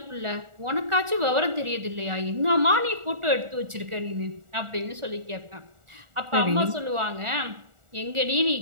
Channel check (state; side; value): late; left; 1.4 ms